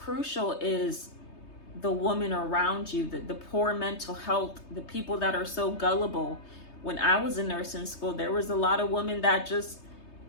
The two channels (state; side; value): late; right; 3.2 ms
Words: is the woman around you, the poor mental health, the people that are so gullible. When I was in nursing school, there was a lot of women that just